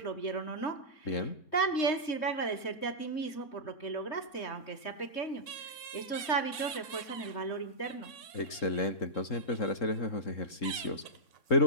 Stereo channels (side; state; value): right; late; 3.6 ms